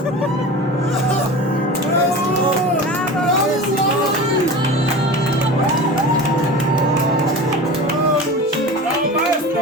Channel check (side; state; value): both; normal; correlation 0.33